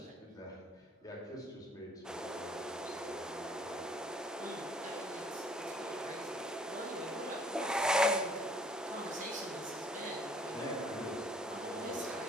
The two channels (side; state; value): both; normal; correlation 0.58